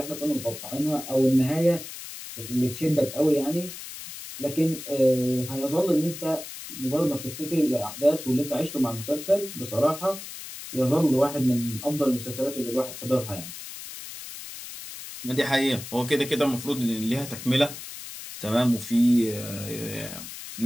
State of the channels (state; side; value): noise; left; hiss, 11 dB below the sound